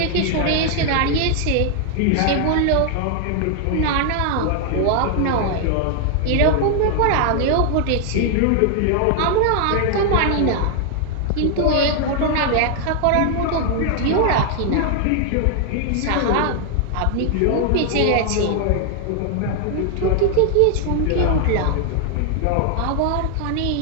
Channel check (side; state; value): both; different; correlation 0.00